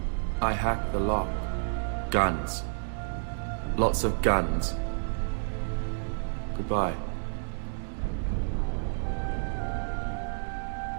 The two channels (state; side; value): silent; left; 58 dB below the other